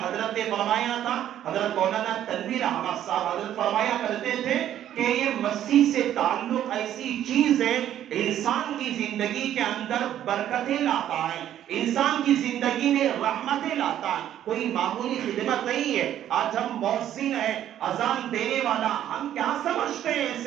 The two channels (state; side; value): quieter; left; 11.2 dB